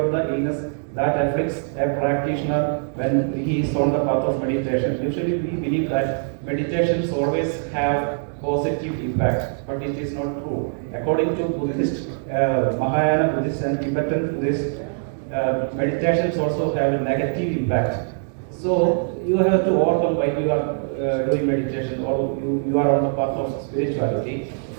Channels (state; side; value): silent; left; digital silence